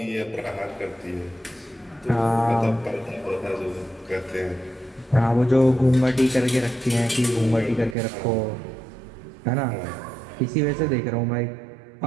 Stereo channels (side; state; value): left; drops out; at 8.0 s